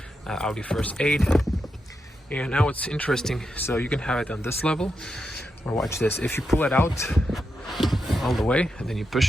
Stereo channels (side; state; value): both; normal; correlation 0.86